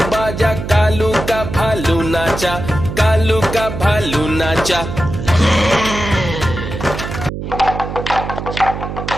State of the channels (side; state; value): right; noise; hum, 7 dB below the sound